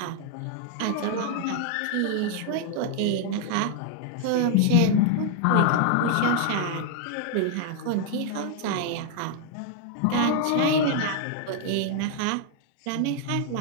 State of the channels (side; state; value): both; different; correlation 0.00